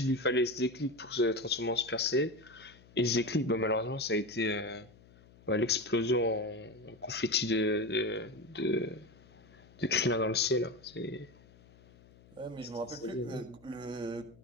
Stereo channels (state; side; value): noise; left; hum, 25 dB below the sound